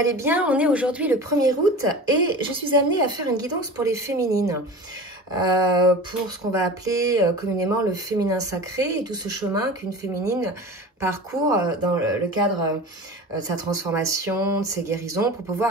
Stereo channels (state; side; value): normal; both; correlation 0.34